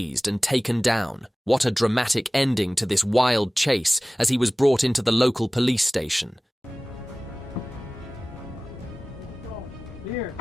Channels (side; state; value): both; normal; correlation 0.98